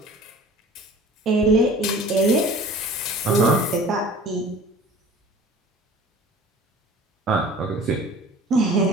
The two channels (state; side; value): normal; both; correlation 0.45